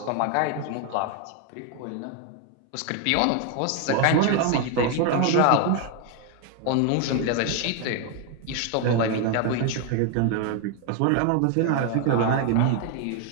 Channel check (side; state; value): both; different; correlation 0.01